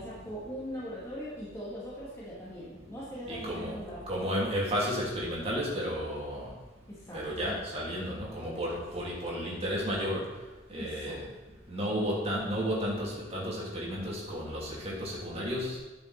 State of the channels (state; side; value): normal; both; correlation 0.44